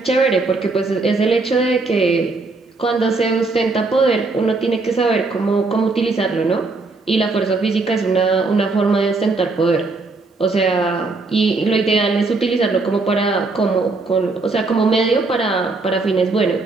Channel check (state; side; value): quieter; left; 3.7 dB